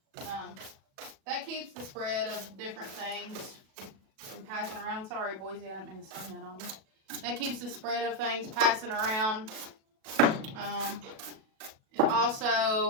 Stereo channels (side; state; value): left; late; 37 ms